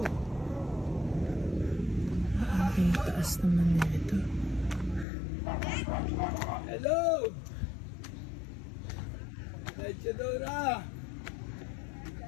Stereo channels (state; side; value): drops out; right; at 5.1 s